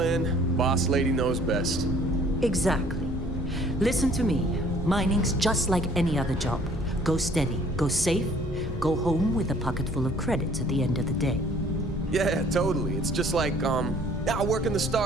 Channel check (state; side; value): normal; both; correlation 0.56